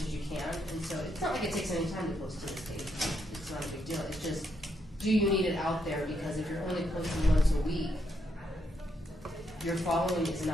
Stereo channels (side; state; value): both; normal; correlation 0.78